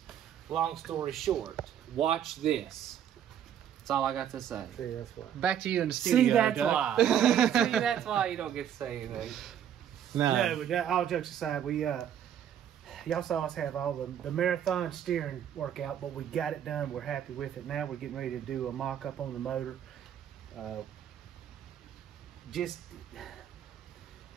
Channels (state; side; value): quieter; left; 9.7 dB